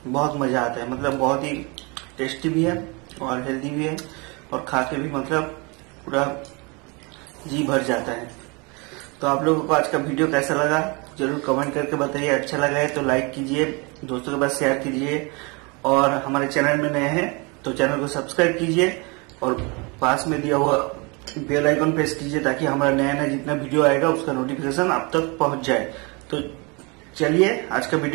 बहुत मजा आता है, मतलब बहुत ही टेस्टी भी है और हेल्दी भी है और खा के भी मतलब पूरा जी भर जाता है। तो आप लोगों को आज का वीडियो कैसा लगा जरूर कमेंट करके बताइए। अच्छा लगा है तो लाइक कीजिए, दोस्तों के पास शेयर कीजिए और हमारे चैनल में नए हैं तो चैनल को सब्सक्राइब कीजिए और पास में दिया हुआ बेल आइकन प्रेस कीजिए ताकि हमारा नया नया जितना वीडियो आएगा उसका नोटिफिकेशन आप तक पहुंच जाए। तो चलिए आज का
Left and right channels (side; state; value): left; quieter; 29.3 dB